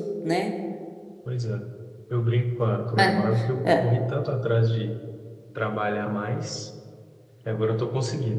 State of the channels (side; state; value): both; identical; correlation 1.00